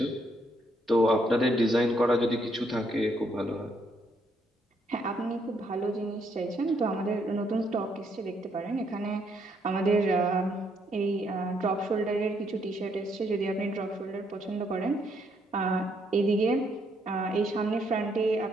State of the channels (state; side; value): normal; both; correlation 0.73